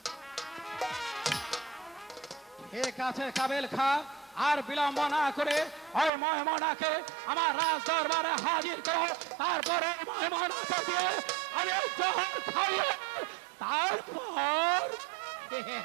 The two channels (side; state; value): left; drops out; at 6.1 s